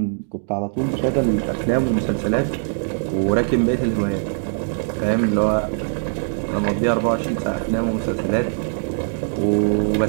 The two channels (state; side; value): silent; left; digital silence